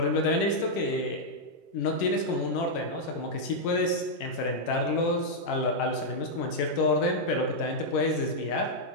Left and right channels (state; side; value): late; right; 10 ms